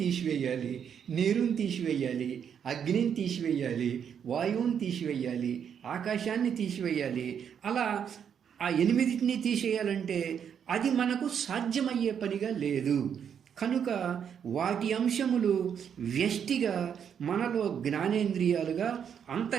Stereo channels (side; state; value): left; quieter; 8.0 dB